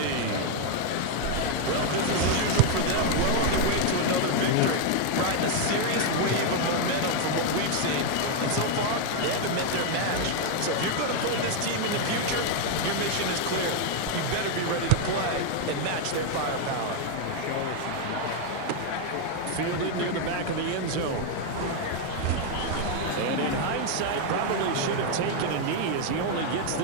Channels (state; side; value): different; both; correlation 0.01